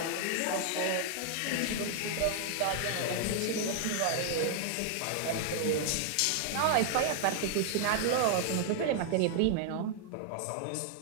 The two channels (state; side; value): different; both; correlation 0.00